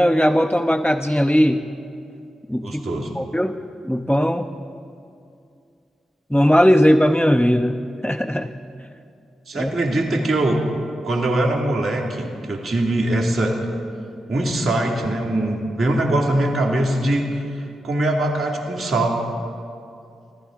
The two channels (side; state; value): both; normal; correlation 0.92